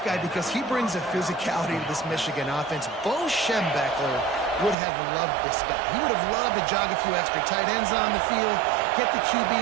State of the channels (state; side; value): drops out; left; at 4.8 s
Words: because he brings a physicality to this Michigan offense. Bo Schembechler would have loved this guy. He would have loved to jog a few extra tight ends on the field, get the QB